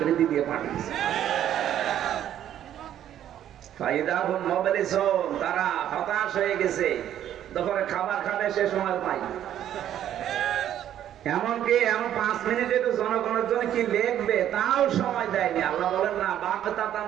দিয়ে পাঠিয়েছে। ফাইদাহুম মুবলিসুন, তারা হতাশ হয়ে গেছে, দুপুরে খাবার খাবে সে সময় পাই। এমনকি এমন 5 মিনিটে তো জনগণের জন্য কি লিখবে তাও সময় দেয়নি। আল্লাহ বলেন না, বাগতাতান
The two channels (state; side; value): quieter; left; 11.0 dB